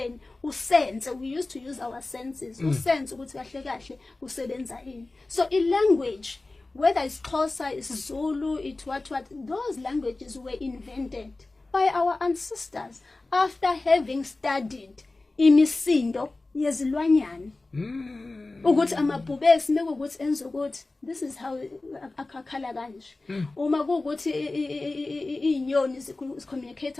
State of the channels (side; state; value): right; quieter; 3.2 dB